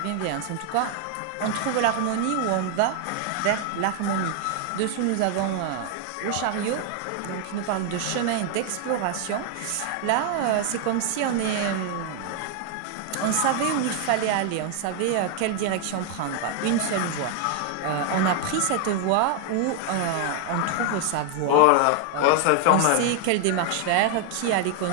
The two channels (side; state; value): both; different; correlation 0.00